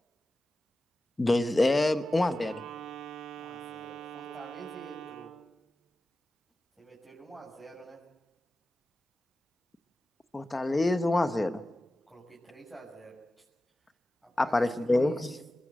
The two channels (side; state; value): both; normal; correlation 0.94